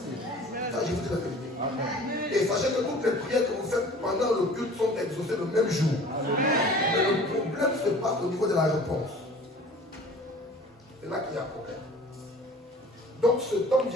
Ça, je vous dis la vérité. Amen. Et sachez que toutes les prières que vous faites pendant le culte sont exaucées le même jour. Amen. Mais le problème se passe au niveau de la réponse. C'est là qu'il y a un problème. Donc ce temps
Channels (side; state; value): both; normal; correlation 0.46